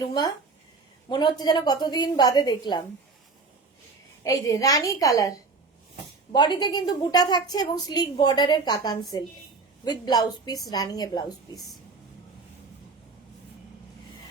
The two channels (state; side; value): quieter; left; 4.1 dB